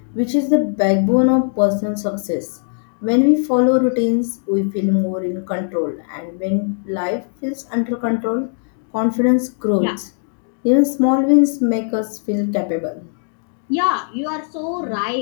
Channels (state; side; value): silent; right; digital silence